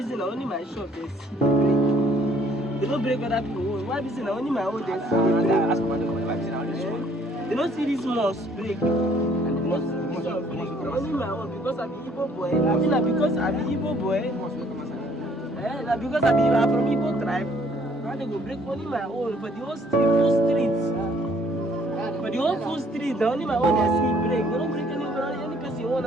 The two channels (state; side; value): normal; both; correlation 0.61